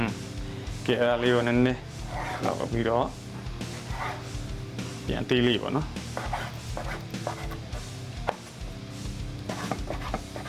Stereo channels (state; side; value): identical; both; correlation 1.00